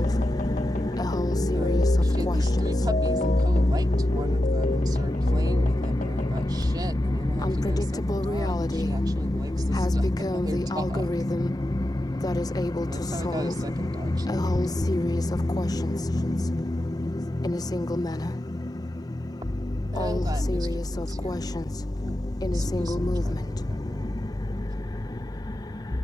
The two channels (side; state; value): both; normal; correlation 0.90